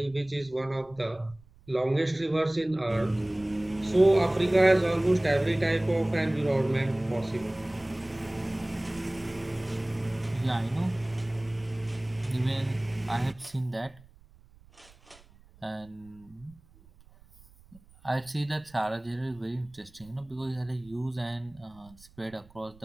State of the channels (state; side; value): noise; right; rumble, 26 dB below the sound